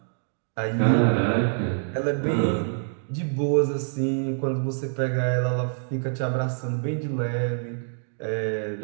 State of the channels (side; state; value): left; silent; digital silence